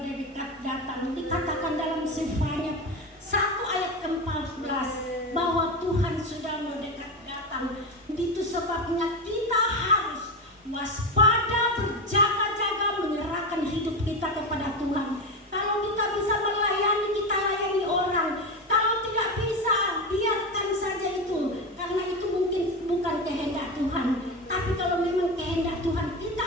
datang. Dikatakan dalam Sefanya 1 ayat ke-14 bahwa Tuhan sudah mendekat datang. Itu sebabnya kita harus waspada, berjaga-jaga, menyerahkan hidup kita kepada Tuhan. Kalau kita bisa melayani, kita layani orang. Kalau tidak bisa, biarkan saja itu, karena itu mungkin bukan kehendak Tuhan. Tapi kalau memang kehendak Tuhan, kita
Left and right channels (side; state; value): both; normal; correlation 0.18